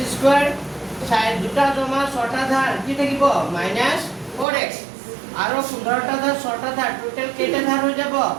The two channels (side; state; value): left; drops out; at 4.5 s